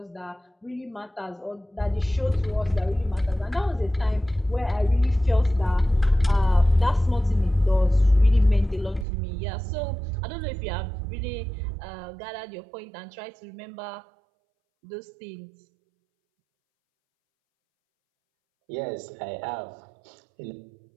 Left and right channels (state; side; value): drops out; left; at 9.1 s